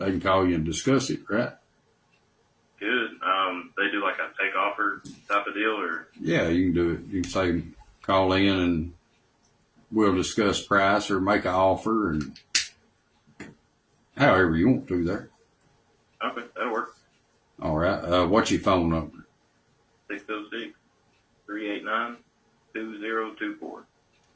can call you and discuss it, right? Good. They do like a take offer type of deal, or Yeah, you can do it. You can say, call in and we'll discuss price or make an offer, and however you want to there. okay, that'll work. All right. What's your phone number? 606-389-2024.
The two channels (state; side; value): identical; both; correlation 1.00